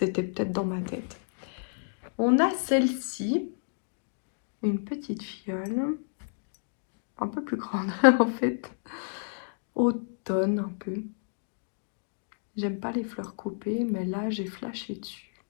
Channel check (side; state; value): right; silent; digital silence